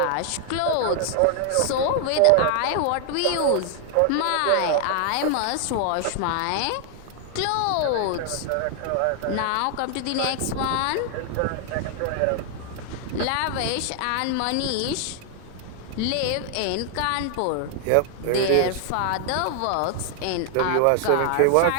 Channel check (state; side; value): different; both; correlation 0.00